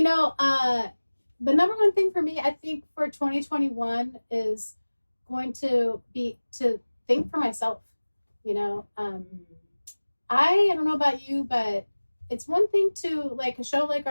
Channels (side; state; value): both; inverted; correlation -1.00